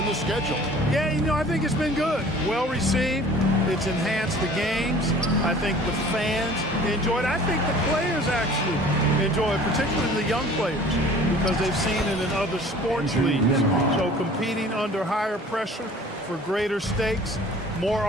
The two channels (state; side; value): normal; both; correlation 0.48